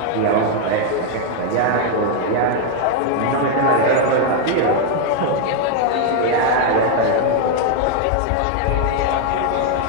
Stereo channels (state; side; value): different; both; correlation 0.00